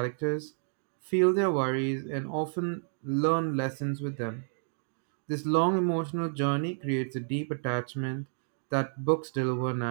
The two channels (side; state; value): left; silent; digital silence